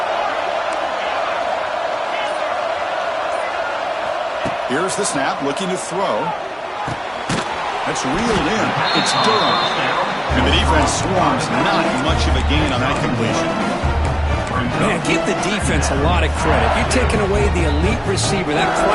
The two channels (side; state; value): both; identical; correlation 1.00